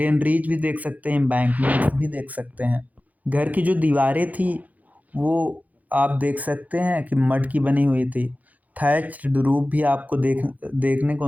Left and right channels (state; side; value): late; left; 0.077 ms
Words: भी देख सकते हैं, एम्बैंकमेंट भी देख सकते हैं। घर की जो दीवारें थी वो आप देख सकते हैं कि मड की बनी हुई थी। थैच्ड रूफ भी आपको देखने